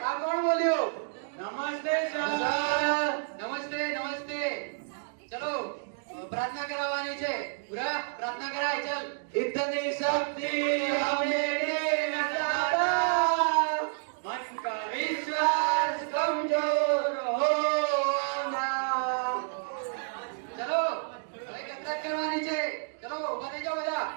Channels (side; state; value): left; silent; digital silence